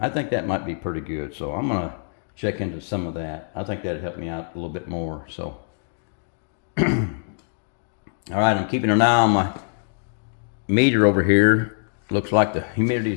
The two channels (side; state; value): right; silent; digital silence